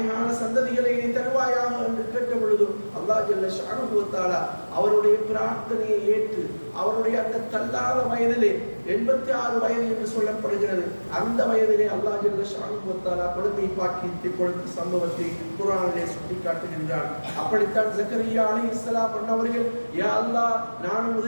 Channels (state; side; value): inverted; both; correlation -1.00